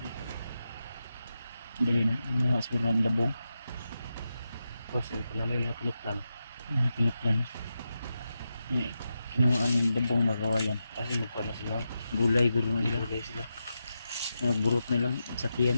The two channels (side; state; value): both; inverted; correlation -0.89